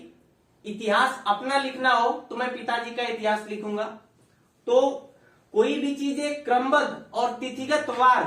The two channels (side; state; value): both; identical; correlation 1.00